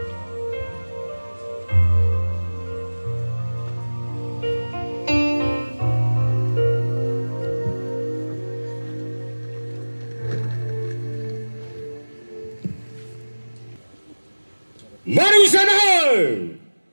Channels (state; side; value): inverted; both; correlation -1.00